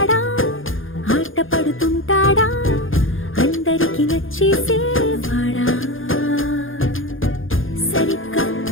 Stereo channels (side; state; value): right; late; 0.59 ms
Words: ఆట పడుతుంటాడా అందరికి నచ్చేసేవాడా సరిగ్గా